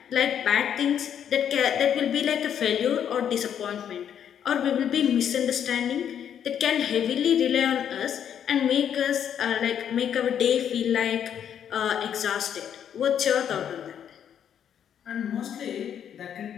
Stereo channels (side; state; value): right; quieter; 9.0 dB